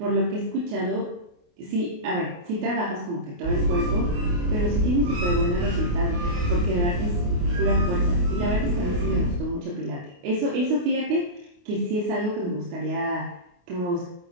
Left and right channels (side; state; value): left; late; 28 ms